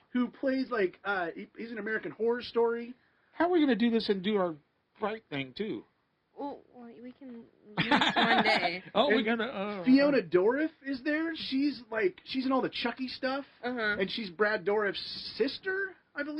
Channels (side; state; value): both; identical; correlation 1.00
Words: who plays like he's an American Horror Story. How are we going to do this and do our fright thing too? Well, we can do this one day. We're gonna. Fiona Dourif is there. She's in all the Chucky stuff, and she's Brad Dourif's sister, I